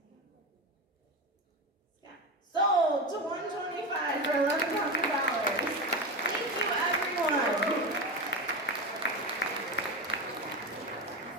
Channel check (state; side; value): normal; both; correlation 0.20